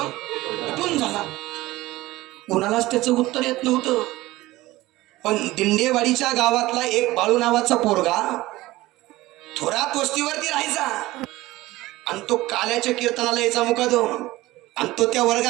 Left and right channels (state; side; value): quieter; left; 18.2 dB